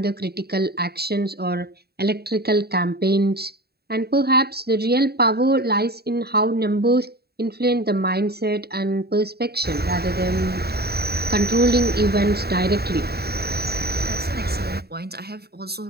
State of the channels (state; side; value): late; left; 0.46 ms